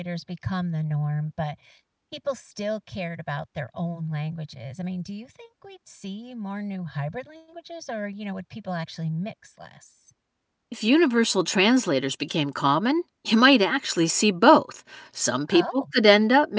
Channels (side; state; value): both; identical; correlation 1.00